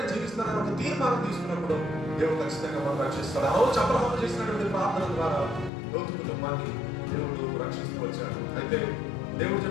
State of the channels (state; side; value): drops out; right; at 5.7 s